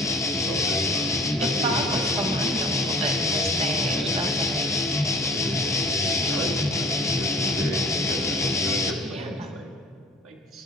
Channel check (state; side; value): normal; both; correlation 0.46